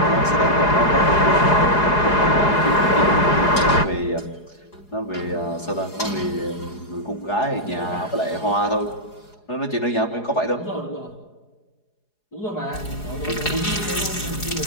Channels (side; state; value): right; late; 4.8 ms